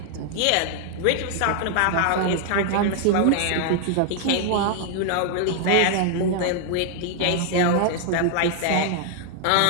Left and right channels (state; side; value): different; both; correlation 0.00